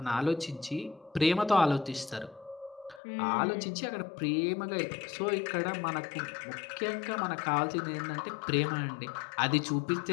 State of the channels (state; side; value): drops out; right; at 3.0 s